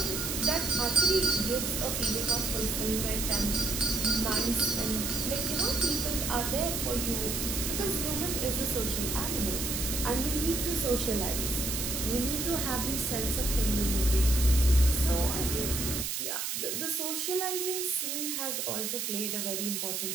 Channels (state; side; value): noise; right; hiss, 2 dB below the sound